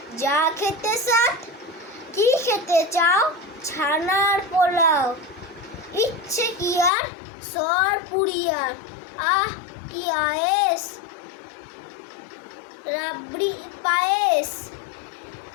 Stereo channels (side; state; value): right; drops out; at 6.9 s